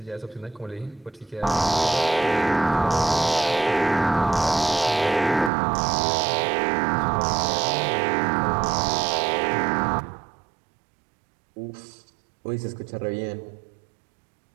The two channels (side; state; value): left; drops out; at 5.5 s